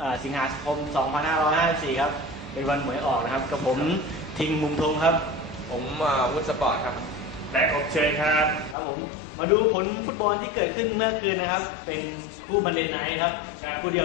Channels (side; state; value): right; drops out; at 8.8 s